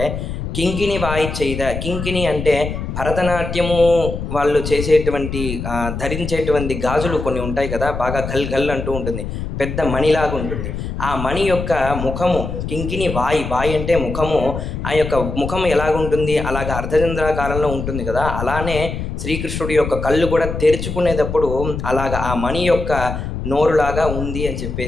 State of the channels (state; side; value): noise; left; rumble, 5 dB below the sound